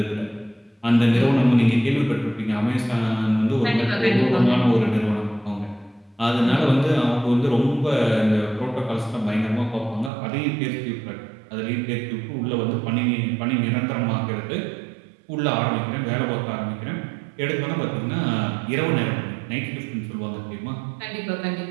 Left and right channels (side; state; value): left; drops out; at 10.1 s